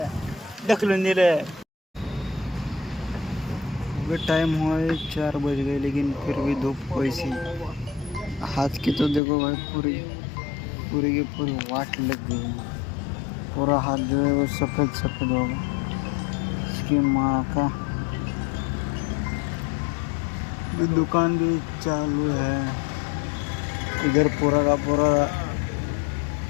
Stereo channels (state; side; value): drops out; right; at 9.2 s